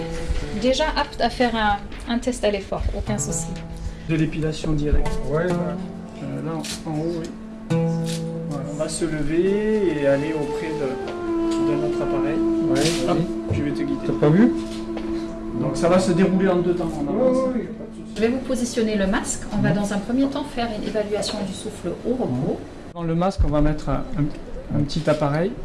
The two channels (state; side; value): identical; both; correlation 1.00